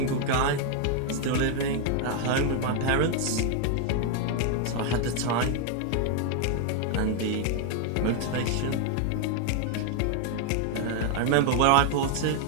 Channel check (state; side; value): different; both; correlation 0.00